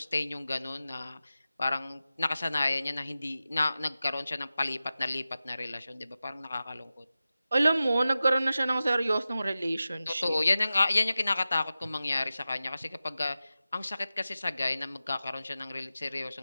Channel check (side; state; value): both; inverted; correlation -0.94